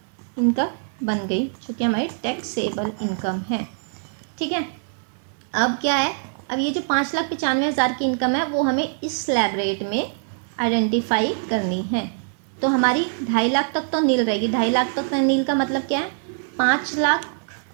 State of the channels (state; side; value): silent; left; 63 dB below the other